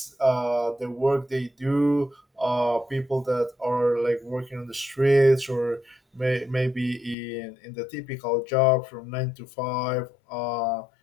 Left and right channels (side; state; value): right; drops out; at 7.2 s